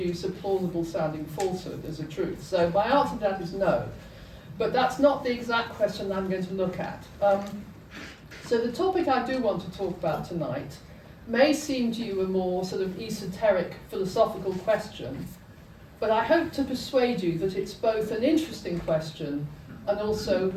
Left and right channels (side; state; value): both; identical; correlation 1.00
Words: a plausible sounding falsehood as a truth. So my answer to that is no. But that's not the exact question I'm going to look at. So the topic I do want to talk about tonight may seem to you a more sort of esoteric philosophical question, but I hope to persuade you that it's both an interesting question and also